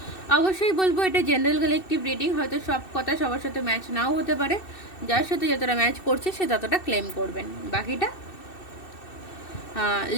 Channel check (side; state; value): right; late; 2.6 ms